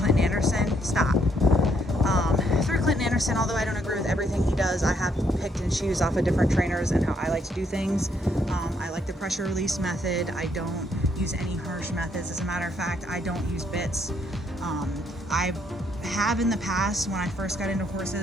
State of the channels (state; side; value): normal; both; correlation 0.72